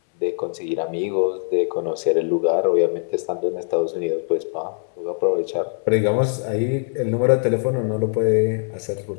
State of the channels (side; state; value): right; silent; digital silence